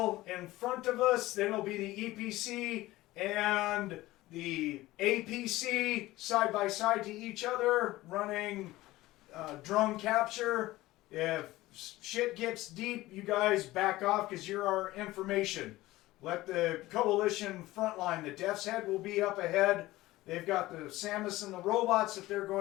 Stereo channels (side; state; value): right; quieter; 17.7 dB